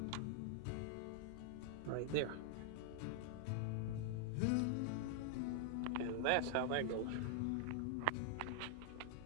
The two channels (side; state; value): both; different; correlation 0.00